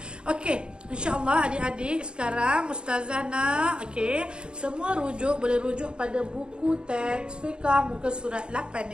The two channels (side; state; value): left; late; 0.052 ms